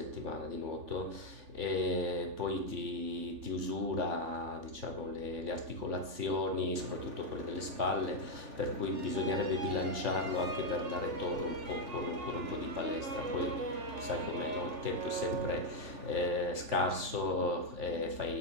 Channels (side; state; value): left; late; 3.4 ms